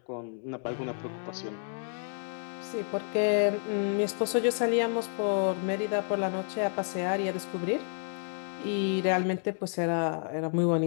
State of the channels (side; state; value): right; silent; digital silence